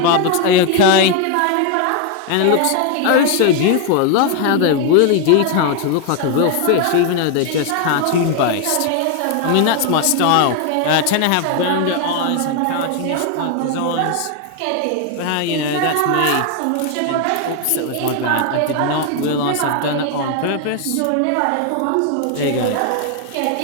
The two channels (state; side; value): different; both; correlation 0.01